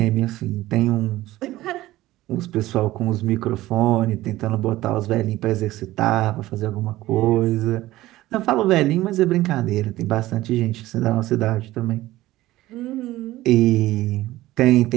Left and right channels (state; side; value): quieter; left; 16.5 dB